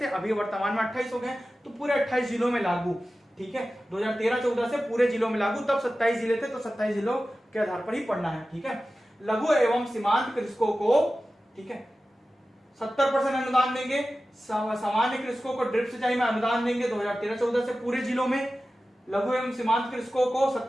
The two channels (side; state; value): both; normal; correlation 0.95